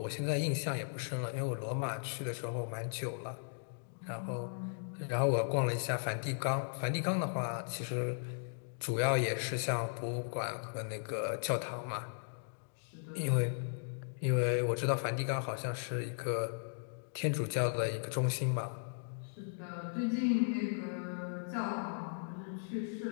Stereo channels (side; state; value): right; silent; digital silence